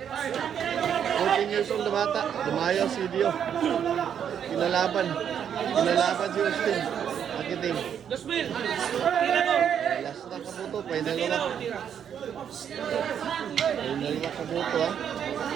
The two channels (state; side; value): quieter; left; 8.5 dB